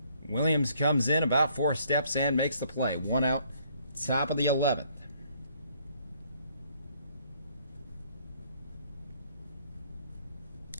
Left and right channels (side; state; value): both; inverted; correlation -0.65